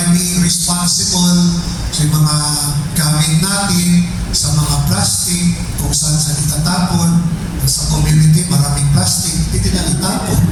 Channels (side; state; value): both; identical; correlation 1.00